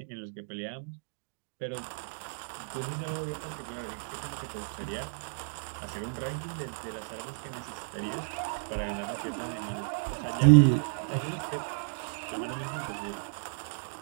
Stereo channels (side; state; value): left; silent; digital silence